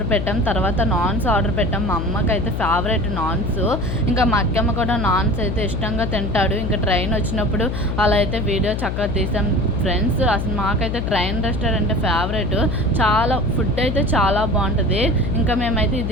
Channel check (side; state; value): left; noise; hum, 2 dB below the sound